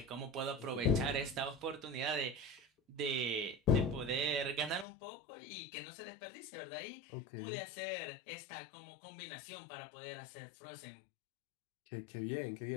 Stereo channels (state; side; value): drops out; right; at 4.9 s